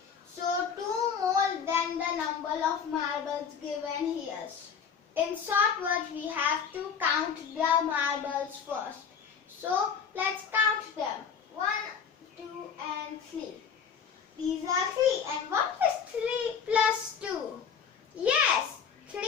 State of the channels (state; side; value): quieter; right; 6.9 dB